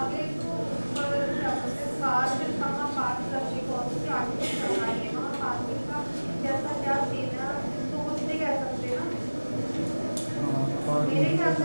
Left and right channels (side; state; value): both; inverted; correlation -1.00